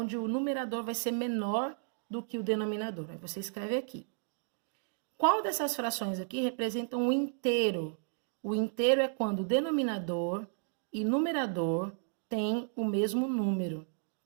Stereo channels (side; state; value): left; silent; digital silence